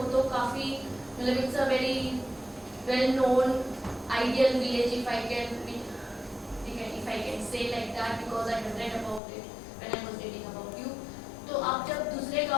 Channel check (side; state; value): right; drops out; at 9.2 s